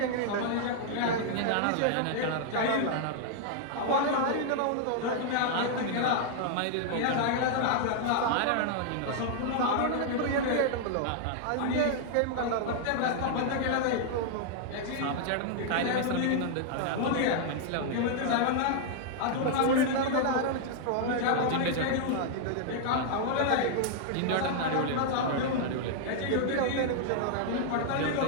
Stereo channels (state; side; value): different; both; correlation -0.01